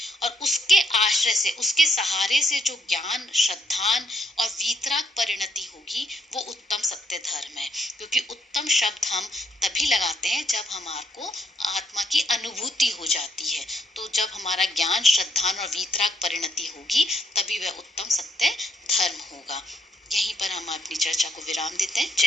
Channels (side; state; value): both; normal; correlation 0.72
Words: और उसके आश्रय से, उसके सहारे से जो ज्ञान, श्रद्धान और वीतराग परिणति होगी, वो उत्तम सत्य धर्म है। क्योंकि उत्तम शब्द हम तभी लगाते हैं जब हमारे को आत्मा की अनुभूति हो जाती है। तो जब हमारा ज्ञान, श्रद्धान और वीतराग परिणति होगी, तभी वह उत्तम सत्य धर्म होगा। यहीं पर हम अपनी चर्चा को विराम देते हैं।